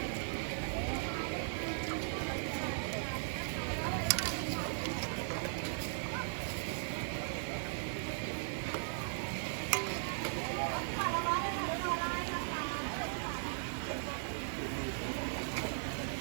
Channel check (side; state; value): left; silent; digital silence